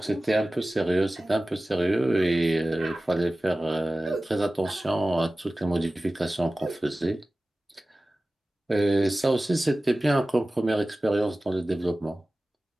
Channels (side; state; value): both; normal; correlation 0.97